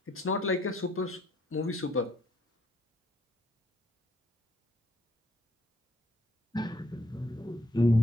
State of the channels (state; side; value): normal; both; correlation 0.69